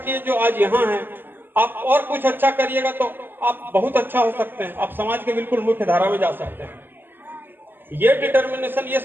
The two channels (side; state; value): left; late; 0.094 ms